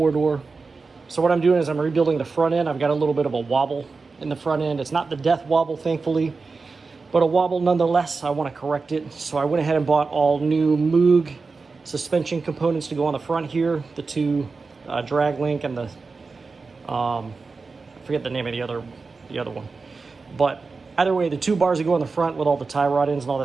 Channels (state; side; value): quieter; left; 4.3 dB